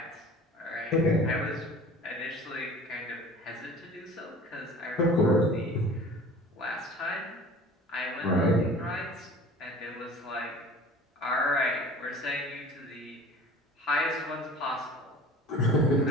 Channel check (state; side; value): normal; both; correlation 0.43